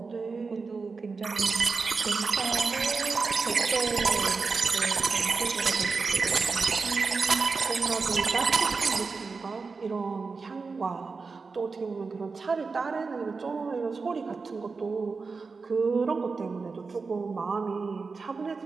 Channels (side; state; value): left; quieter; 4.5 dB